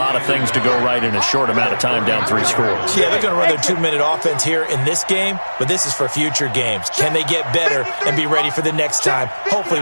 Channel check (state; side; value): inverted; both; correlation -1.00